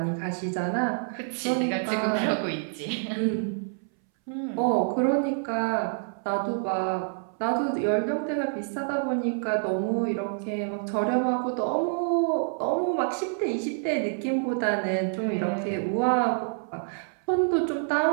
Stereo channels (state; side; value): silent; left; 60 dB below the other